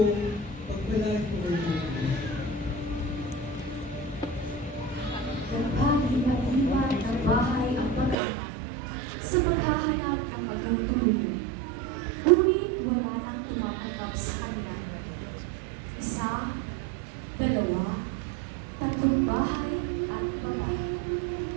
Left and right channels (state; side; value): drops out; left; at 8.2 s